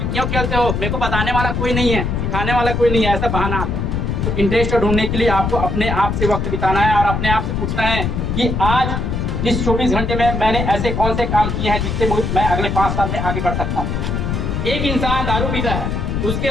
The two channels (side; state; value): left; noise; rumble, 1 dB below the sound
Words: क्यों खेलते हो, मेरे को बताने वाला कोई नहीं है, सिखाने वाला कोई नहीं है, ऐसा बहाना आता है। तो इंटरेस्ट ढूंढने के लिए आपको अपने आप से वक्त बिताना है और अपने आप से पूछना है कि आज इस 24 घंटे में मैंने ऐसे कौन से काम किए हैं जिससे मैं अगले 5 साल में आगे बढ़ सकता हूँ। एक इंसान दारू पीता है,